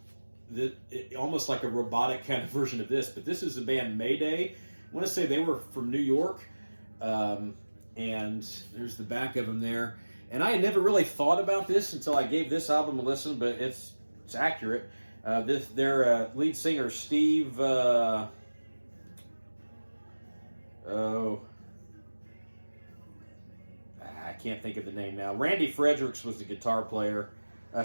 almost like a robotic kind of version of this. But this is the band Mayday. I want to say they were from New York, and there's the back of them there. And I had never really thought about this until I gave this album a listen, but it's accurate. Their lead singer, Steve, I can't think of the name now. Randy Fredericks was the guitar player.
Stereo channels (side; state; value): both; inverted; correlation -1.00